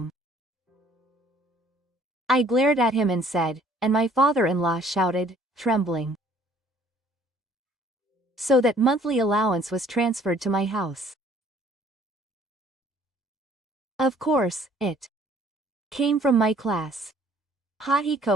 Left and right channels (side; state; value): both; normal; correlation 0.58